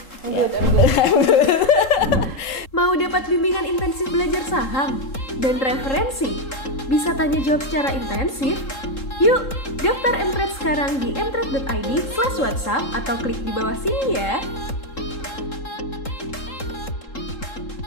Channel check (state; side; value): late; right; 3.7 ms